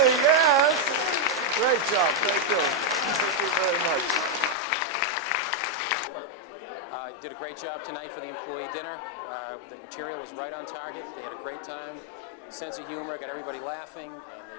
yes. Great job. Thank you. Thank you very much. Did a great job tonight for the employee dinner. The material was right on target. They had a great time. Sense of humor, got everybody laughing, and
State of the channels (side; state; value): right; drops out; at 4.5 s